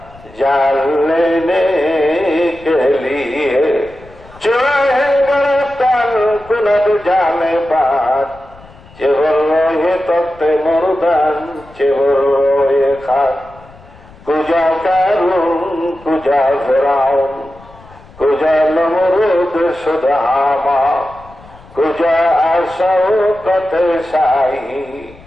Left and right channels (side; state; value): left; noise; rumble, 23 dB below the sound